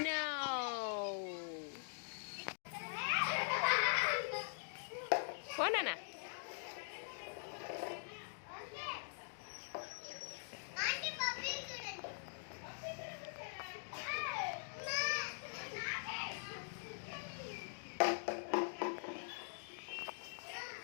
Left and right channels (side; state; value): right; silent; digital silence